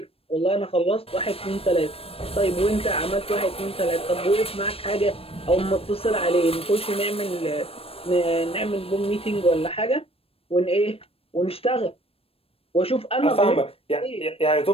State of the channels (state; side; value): late; right; 0.28 ms